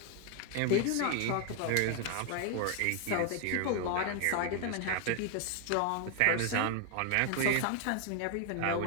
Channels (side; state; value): both; different; correlation 0.01